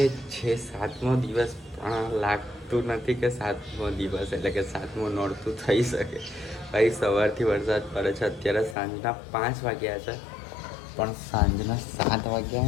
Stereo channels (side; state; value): right; drops out; at 8.8 s